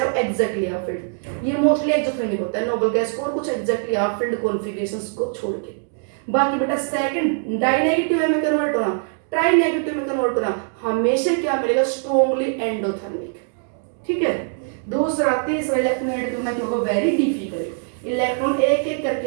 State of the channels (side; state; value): left; silent; 60 dB below the other